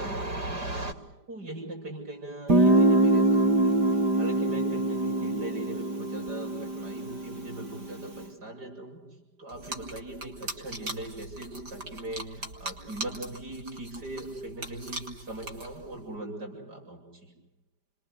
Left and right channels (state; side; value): late; left; 5.0 ms